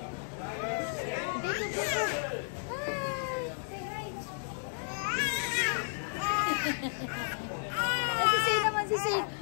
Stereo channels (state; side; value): silent; right; digital silence